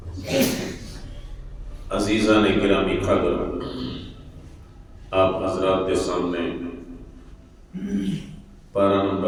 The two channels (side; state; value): both; identical; correlation 1.00